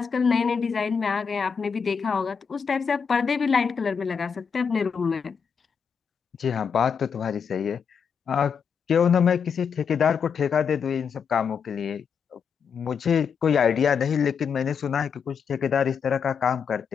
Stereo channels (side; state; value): right; quieter; 6.5 dB